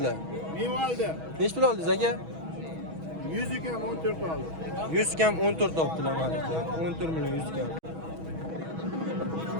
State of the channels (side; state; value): left; late; 6.2 ms